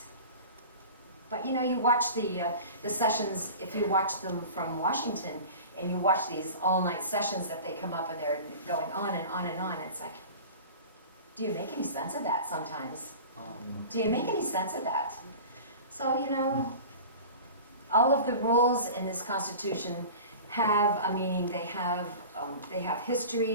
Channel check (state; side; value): inverted; both; correlation -0.37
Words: But you know, you watch the sessions, if you watch them from Washington, and you watch these all-night sessions that they come up and they're going on and on and on, it's like, do you make any sense of that sometimes? Do you make any sense of that? So, you know, all of the rules in this Constitution have a meaning. They have